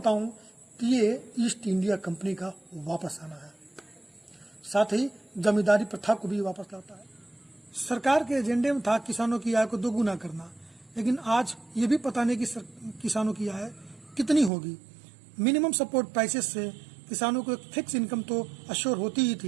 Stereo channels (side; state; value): left; drops out; at 14.5 s